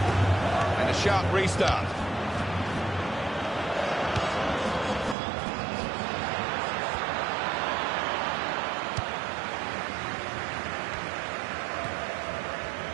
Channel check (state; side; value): drops out; left; at 5.2 s